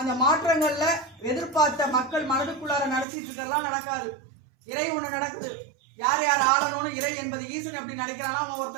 அந்த மாற்றங்கள்ல எதிர்பார்த்த மக்கள் மனதுக்குள்ளார நடத்திட்டு இருக்கலாம் நடக்காது. இறை ஒண்ணு நடக்குது. யார் ஆளணும்னு இறை என்பது ஈசன் எப்படி நினைக்கிறானா,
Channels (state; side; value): drops out; left; at 3.1 s